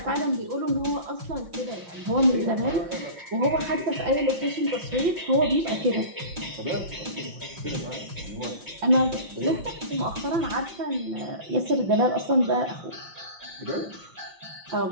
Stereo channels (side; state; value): left; late; 5.7 ms